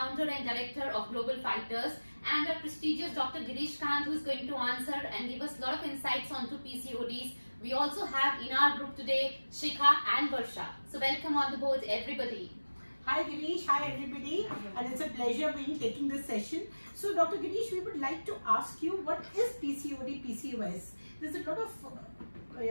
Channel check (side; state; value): both; inverted; correlation -1.00